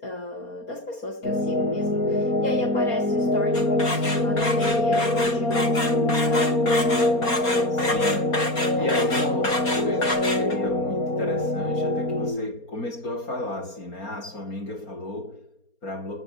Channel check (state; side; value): late; right; 4.3 ms